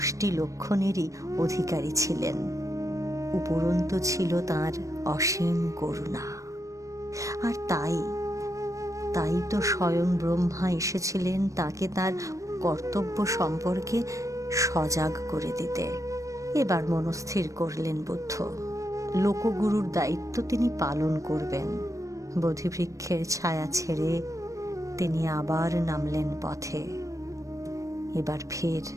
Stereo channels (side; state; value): left; late; 0.16 ms